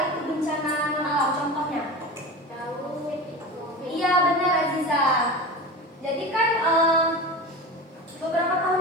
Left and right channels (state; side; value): normal; both; correlation 0.29